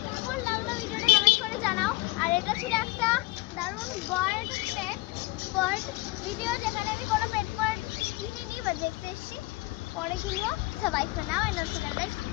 কেমন লাগলো ভিডিওটা কমেন্ট করে জানাও। আর এটা ছিল একটা দারুণ বার্ড ভিডিও, যেখানে আমি কোনো পেট বার্ড কিনিনি, বাট দেখতে এসেছি, পরে কিনবো। সবাই for now and also like my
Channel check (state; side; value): quieter; right; 21.6 dB